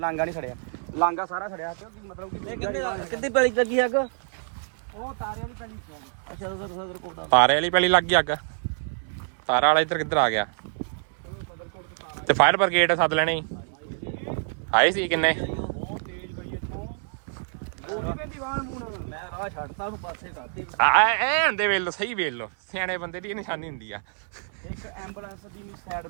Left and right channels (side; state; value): left; silent; 60 dB below the other